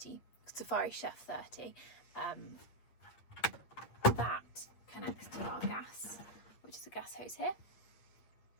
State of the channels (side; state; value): right; late; 8.5 ms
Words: Chef 30. That connects to our gas, which is a gas hose here.